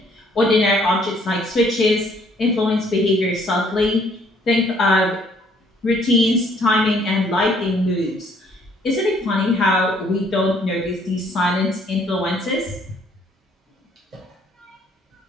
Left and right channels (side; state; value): both; normal; correlation 0.63